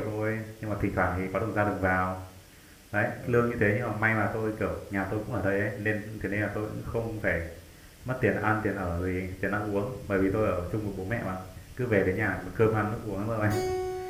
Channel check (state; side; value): identical; both; correlation 1.00